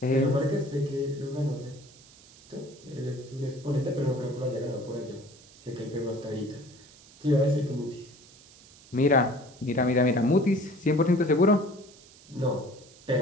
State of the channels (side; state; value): right; noise; hiss, 24 dB below the sound